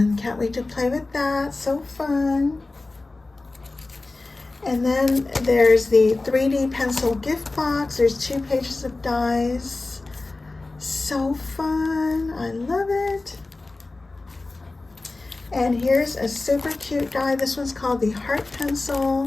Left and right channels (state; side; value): quieter; right; 3.2 dB